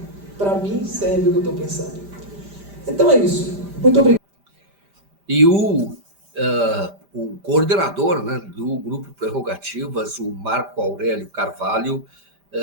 Para mim, serve o que eu estou pensando. Então é isso. Muito obrigado. E o coordenador, né, do Grupo Prerrogativas, o Marco Aurélio Carvalho,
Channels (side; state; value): left; late; 5.0 ms